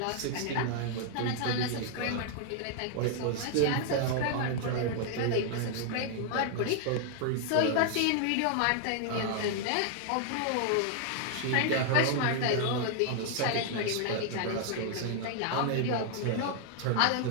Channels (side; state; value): both; different; correlation 0.00